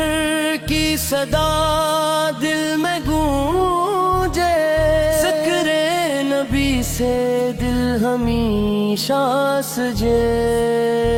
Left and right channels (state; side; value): identical; both; correlation 1.00